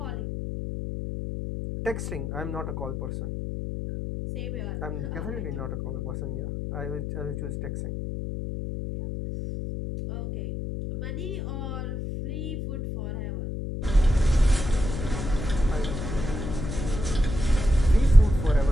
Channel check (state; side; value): noise; left; hum, 5 dB below the sound